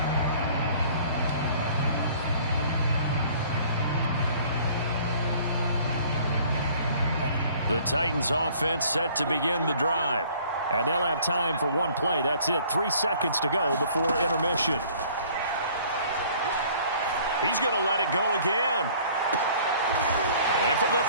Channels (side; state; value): both; inverted; correlation -0.54